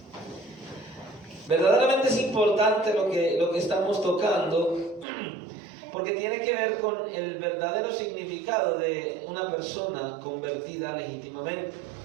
Verdaderamente es importante lo que estamos tocando, porque tiene que ver con el verdadero significado de una persona convertida legítimamente.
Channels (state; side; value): drops out; left; at 5.1 s